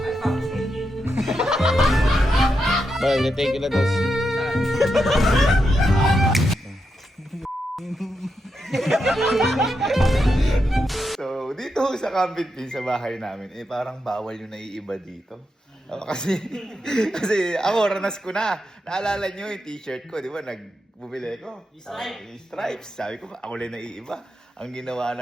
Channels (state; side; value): normal; both; correlation 0.85